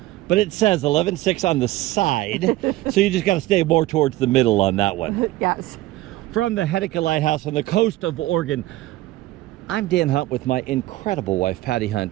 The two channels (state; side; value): quieter; left; 17.2 dB